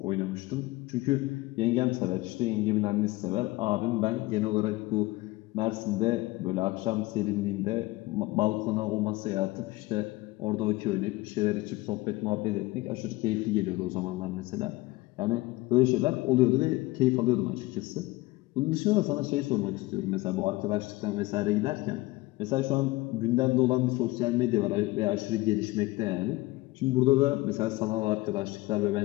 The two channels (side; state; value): right; quieter; 20.5 dB